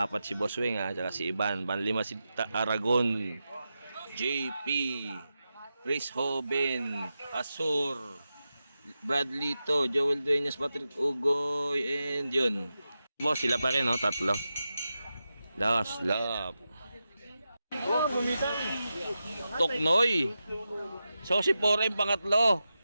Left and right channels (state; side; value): inverted; both; correlation -0.91